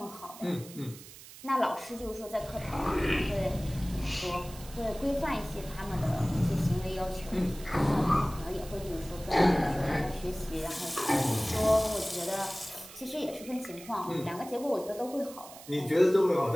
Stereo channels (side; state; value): right; noise; hiss, 17 dB below the sound